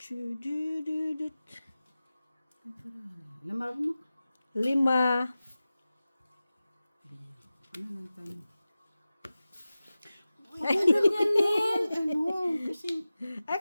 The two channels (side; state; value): both; inverted; correlation -0.96